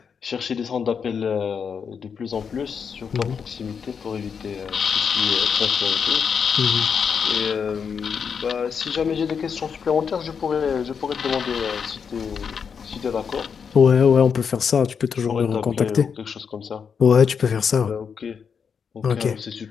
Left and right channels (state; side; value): quieter; right; 6.5 dB